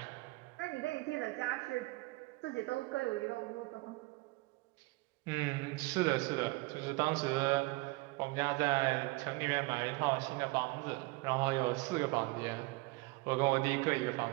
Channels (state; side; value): quieter; left; 23.9 dB